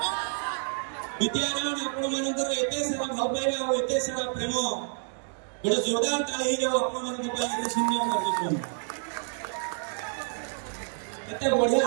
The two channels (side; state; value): left; silent; 59 dB below the other